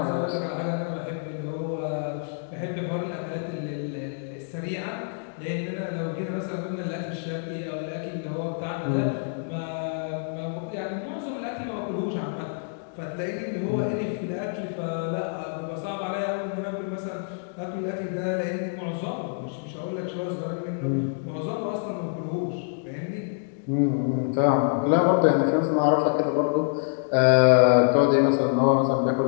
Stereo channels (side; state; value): right; silent; digital silence